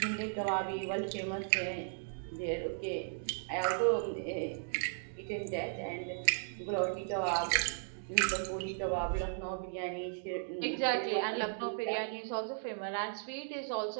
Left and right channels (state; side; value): silent; left; digital silence